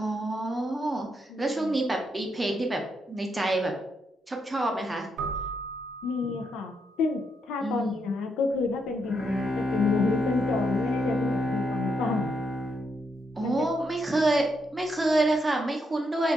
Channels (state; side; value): normal; both; correlation 0.79